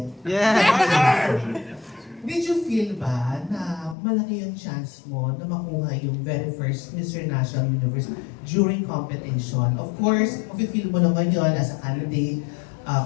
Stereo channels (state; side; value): drops out; right; at 4.0 s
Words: Yeah. Did you feel ba na malaki yung chance mo na makuha yung very first Mr. National Universe during competition? Of course, feel mo naman yun as a candidate,